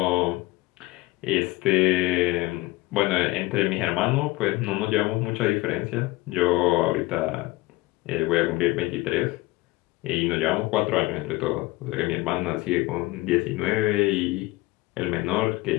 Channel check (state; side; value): quieter; right; 20.3 dB